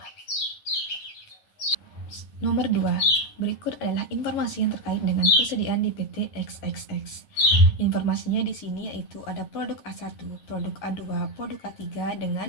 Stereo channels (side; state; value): right; late; 9.6 ms